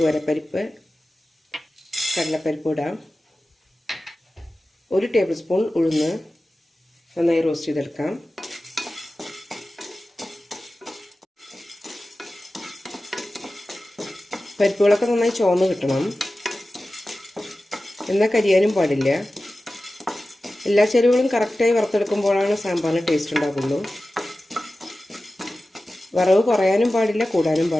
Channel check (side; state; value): both; normal; correlation 0.95